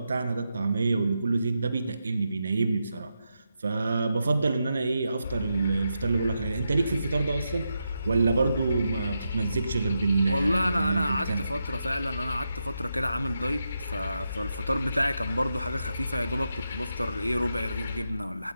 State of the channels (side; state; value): both; inverted; correlation -0.86